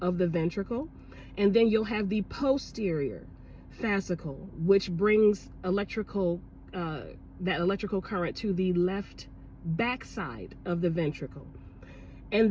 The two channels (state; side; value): identical; both; correlation 1.00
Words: of the ventricle. And then you'll have the posterior fascicle, which brings that electrical current to the left backside of the ventricle.